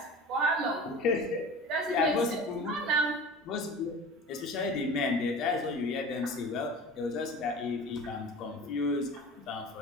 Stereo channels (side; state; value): both; normal; correlation 0.37